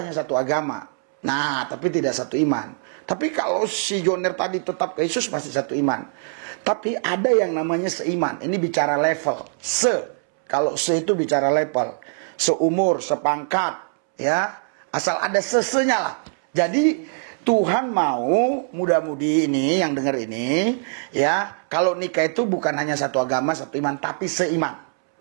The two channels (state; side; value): silent; left; 64 dB below the other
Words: satu agama. Nah, tapi tidak satu iman. Tapi kalau si Joner tadi tetap ke Yesus pasti satu iman. Tapi ada yang namanya seiman. Ini bicara level. Kalau se itu bicara level. Seumur, sepangkat, ya. Asal ada sesenya lah. Jadi Tuhan mau muda-mudi ini yang dengar ini, ya, kalau nikah itu bukan hanya satu agama, satu iman, tapi seiman.